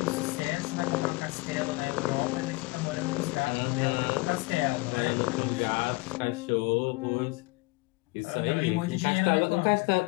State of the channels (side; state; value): right; quieter; 24.7 dB